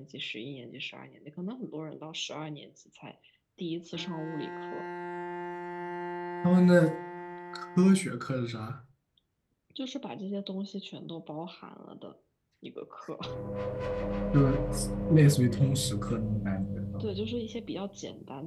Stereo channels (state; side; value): identical; both; correlation 1.00